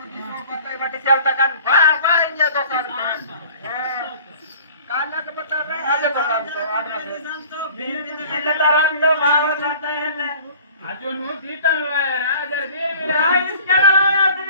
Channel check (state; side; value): inverted; both; correlation -0.48